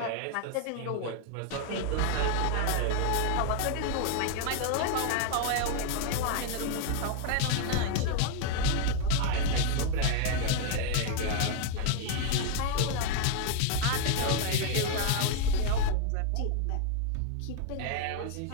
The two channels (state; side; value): different; both; correlation 0.00